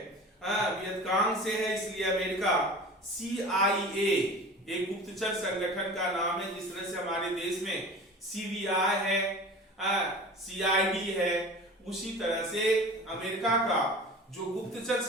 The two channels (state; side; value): normal; both; correlation 0.38